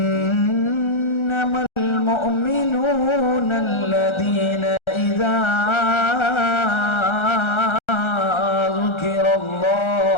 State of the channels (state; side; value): late; right; 1.3 ms